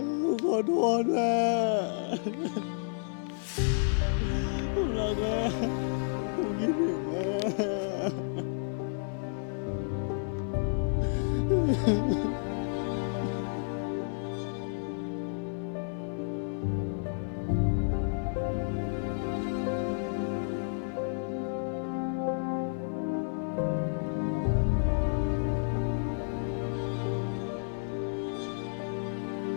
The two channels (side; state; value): right; silent; 56 dB below the other